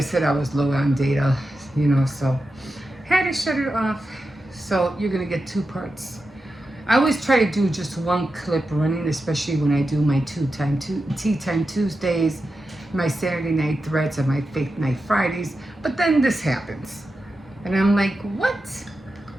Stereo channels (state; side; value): normal; both; correlation 0.90